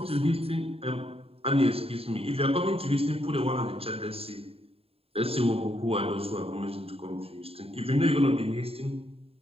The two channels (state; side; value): late; left; 0.28 ms